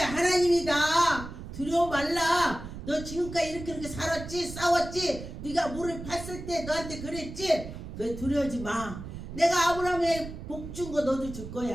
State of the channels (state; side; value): noise; right; rumble, 10 dB below the sound